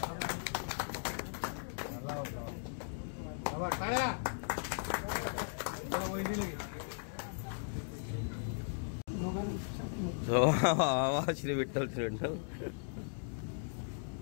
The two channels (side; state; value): right; silent; digital silence